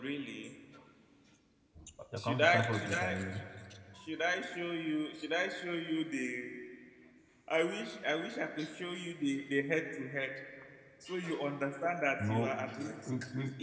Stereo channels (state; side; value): identical; both; correlation 1.00